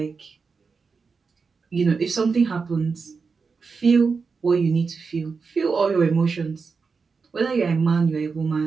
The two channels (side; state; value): left; quieter; 5.0 dB